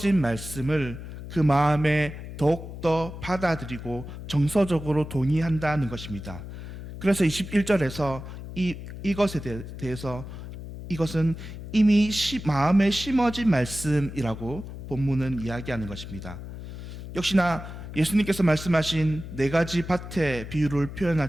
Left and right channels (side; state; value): left; noise; hum, 11 dB below the sound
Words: 말씀을 그 마음에 더욱더 받아들이고 정서적으로 동의한다는 것입니다. 그래서 21절에서 이것에 대해서 이것은 이미 마음에 심어진 말씀이라고 본문은 이야기하는 것입니다. 역시나 예수님께서 말씀하신 네 가지 밭의 비유를